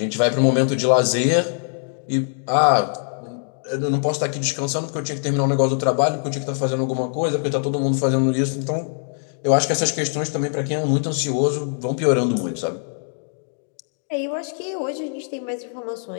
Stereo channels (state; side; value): silent; right; digital silence